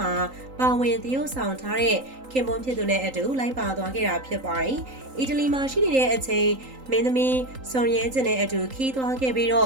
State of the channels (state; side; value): late; left; 3.8 ms